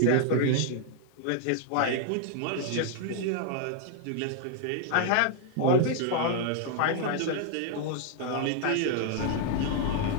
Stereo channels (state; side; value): different; both; correlation 0.00